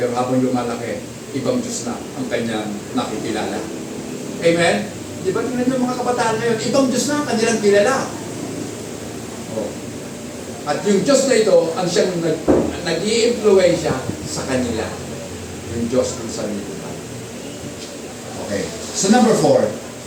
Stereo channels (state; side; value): identical; both; correlation 1.00